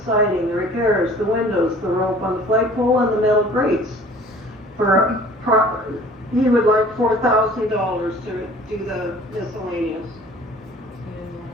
siding, the repairs, the windows, the rope on the flagpole, and the metal grates. He would like $4,000 to do the miscellaneous.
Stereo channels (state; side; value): normal; both; correlation 0.49